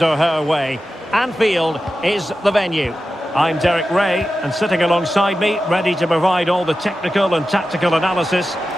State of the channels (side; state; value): both; normal; correlation 0.93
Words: or her way. Anfield is the venue. I'm Derek Ray, and sitting alongside me, ready to provide all the technical and tactical analysis,